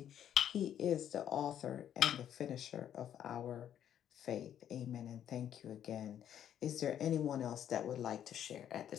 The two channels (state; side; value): quieter; right; 10.1 dB